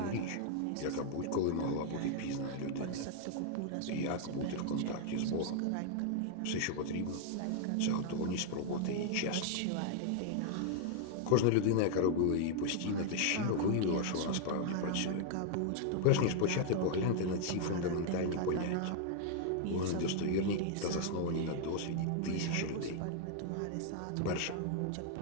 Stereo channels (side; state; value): both; different; correlation 0.00